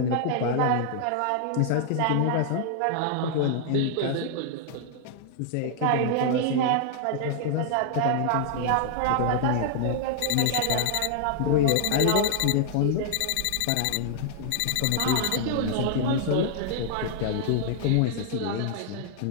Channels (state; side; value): different; both; correlation 0.00